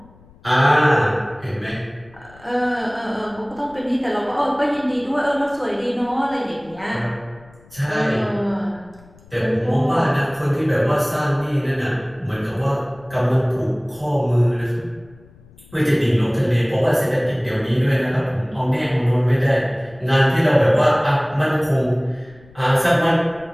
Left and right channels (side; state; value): left; noise; rumble, 25 dB below the sound